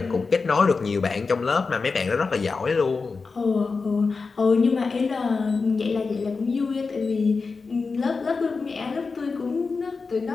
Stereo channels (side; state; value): right; quieter; 4.5 dB